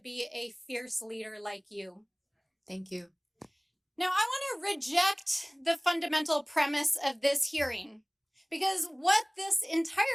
a fierce leader like you. Thank you. Now, I want to reject the fundamental premise of this hearing, because what this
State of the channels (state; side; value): identical; both; correlation 1.00